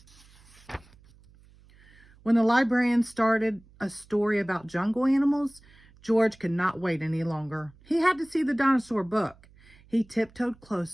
When the librarian started a story about jungle animals, George could not wait any longer. He had to see the dinosaur book. He tiptoed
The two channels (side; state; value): right; noise; hum, 27 dB below the sound